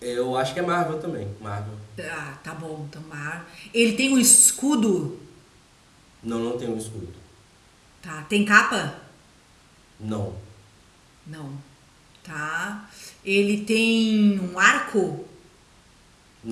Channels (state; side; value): identical; both; correlation 1.00